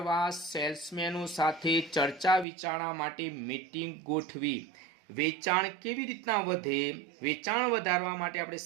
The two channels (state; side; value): drops out; left; at 2.5 s